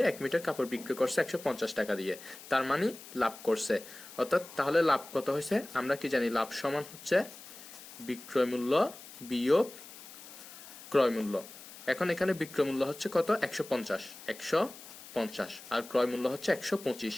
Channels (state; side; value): noise; left; hiss, 16 dB below the sound